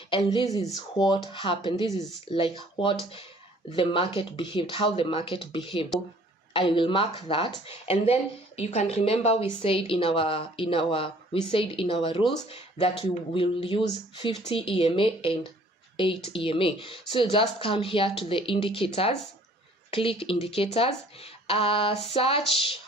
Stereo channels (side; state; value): both; normal; correlation 0.56